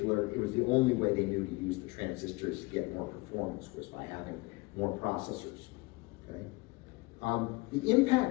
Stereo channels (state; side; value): quieter; right; 24.0 dB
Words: it was the only way they knew to use the transistors to get more performance was by having more processors. Okay? The